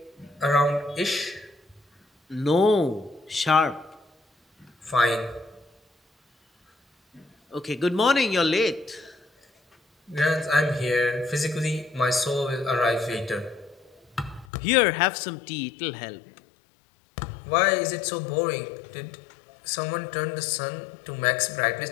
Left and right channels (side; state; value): right; drops out; at 14.5 s